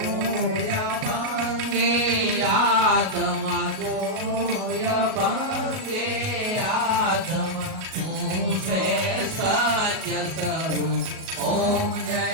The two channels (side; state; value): left; late; 38 ms